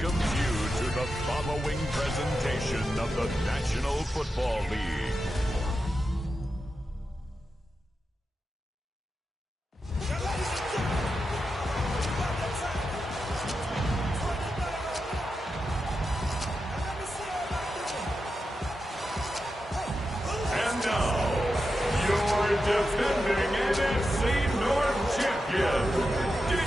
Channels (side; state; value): both; normal; correlation 0.89